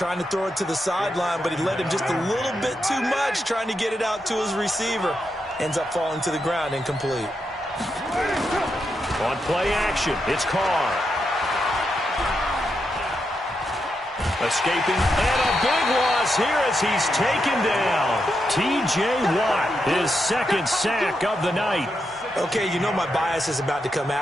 to throw it to the sideline, but he led him just a little bit too much, trying to get it out to his receiver. Ends up falling to the ground, incomplete. On play action, it's Carr. Escaping, and a big loss here as he's taken down. T.J. Watt, his second sack of the night. Okay, my bias is about to come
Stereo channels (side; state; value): both; normal; correlation 0.84